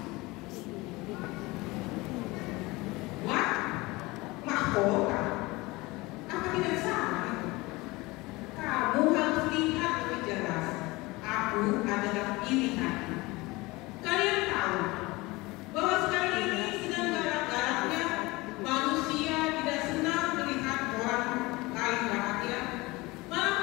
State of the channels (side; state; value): right; quieter; 22.3 dB